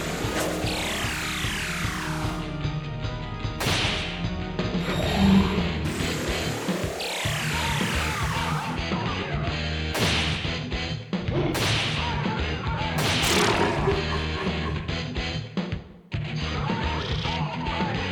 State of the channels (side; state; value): both; identical; correlation 1.00